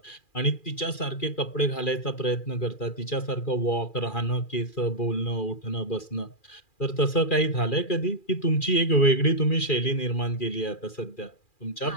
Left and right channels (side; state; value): right; late; 2.4 ms